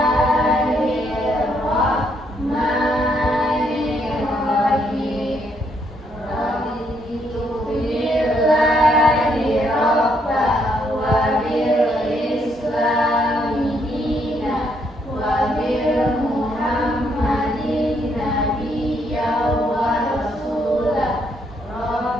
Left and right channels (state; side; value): normal; both; correlation 0.73